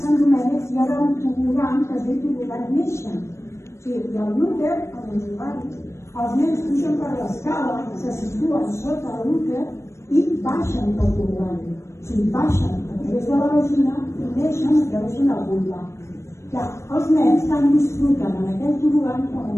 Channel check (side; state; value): right; late; 0.13 ms